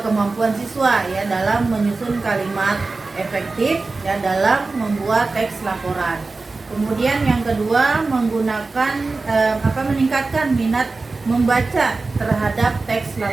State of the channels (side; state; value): left; quieter; 3.7 dB